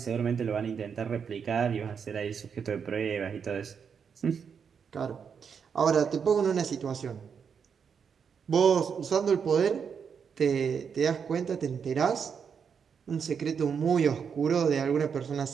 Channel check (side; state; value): left; quieter; 6.7 dB